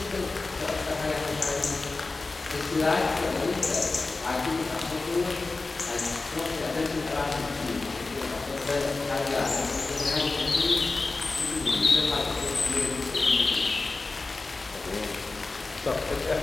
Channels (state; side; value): quieter; right; 3.6 dB